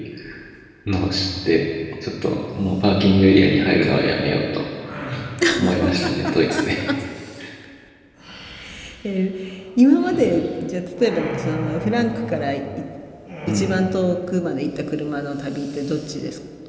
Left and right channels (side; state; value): both; identical; correlation 1.00